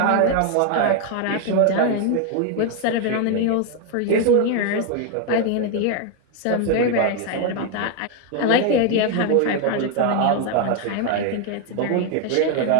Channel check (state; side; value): different; both; correlation 0.01